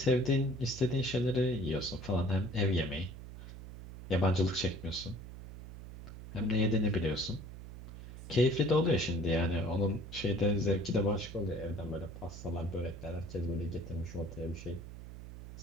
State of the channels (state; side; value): noise; right; hum, 12 dB below the sound